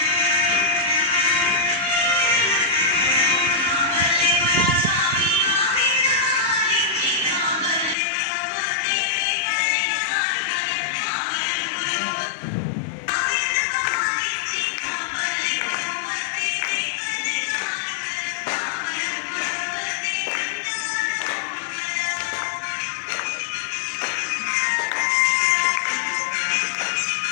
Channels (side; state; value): right; drops out; at 8.0 s